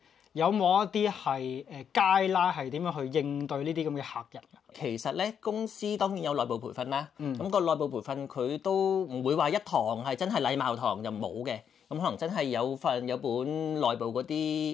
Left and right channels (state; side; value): quieter; right; 7.9 dB